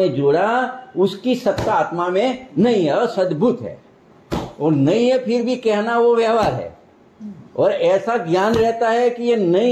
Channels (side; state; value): both; identical; correlation 1.00